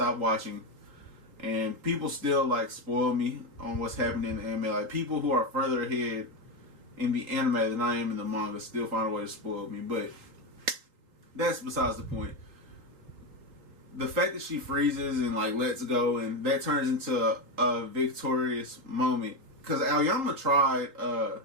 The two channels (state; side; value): late; left; 3.8 ms